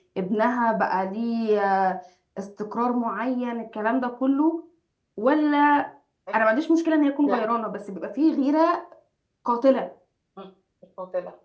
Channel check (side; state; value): both; identical; correlation 1.00